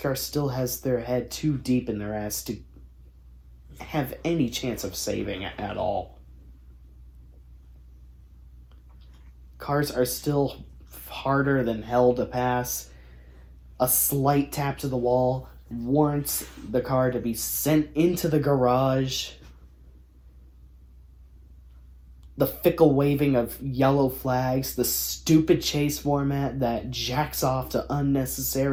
still has their head too deep in their ass to have any chance of saving it at all. Cars are still harder than hell to pass. A slight tap to the wall warrants the car to be sent into the garage. The fickle waving of yellow flags, the stupid chase format that jacks off to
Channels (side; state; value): both; identical; correlation 1.00